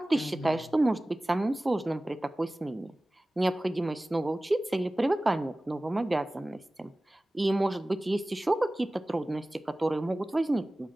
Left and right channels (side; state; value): both; normal; correlation 0.97